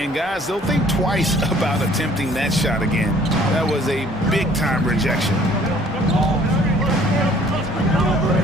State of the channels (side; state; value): both; normal; correlation 0.56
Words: guys, they'll think twice about attempting that shot again. That was a big-time rejection.